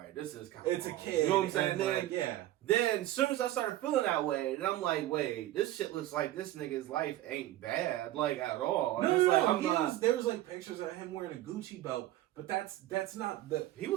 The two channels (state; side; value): quieter; left; 14.9 dB